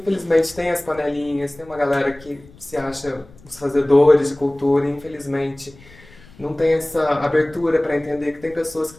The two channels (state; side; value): noise; left; rumble, 24 dB below the sound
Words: tem as panelinhas, tem uma galera que se acha os fazedores de cultura e, infelizmente, não tem essa abertura para entender que tem pessoas que